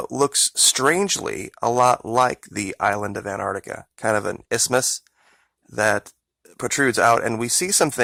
looks strangely a lot like the island of Antarctica, kind of an isthmus that protrudes out, and we see some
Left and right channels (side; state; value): both; identical; correlation 1.00